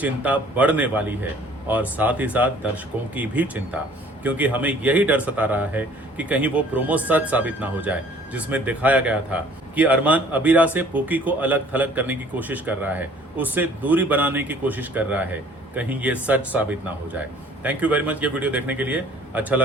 बढ़ने वाली है, और साथ ही साथ दर्शकों की भी चिंता, क्योंकि हमें यही डर सता रहा है कि कहीं वो प्रोमो सच साबित ना हो जाए, जिसमें दिखाया गया था कि अरमान अबीरा से पूकी को अलग थलग करने की कोशिश कर रहा है, उससे दूरी बनाने की कोशिश कर रहा है। कहीं ये सच साबित ना हो जाए। थैंक यू वेरी मच ये वीडियो देखने के लिए। अच्छा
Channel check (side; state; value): both; normal; correlation 0.54